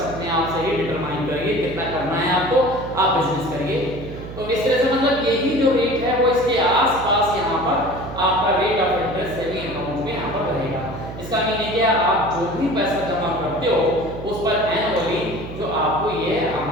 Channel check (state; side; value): noise; right; hum, 11 dB below the sound